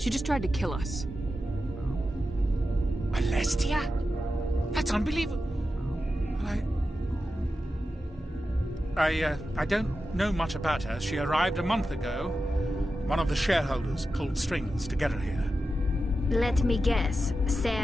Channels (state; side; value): normal; both; correlation 0.91